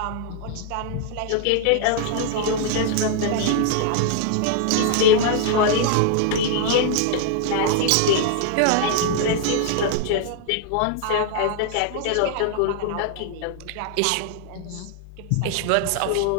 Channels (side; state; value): both; different; correlation 0.00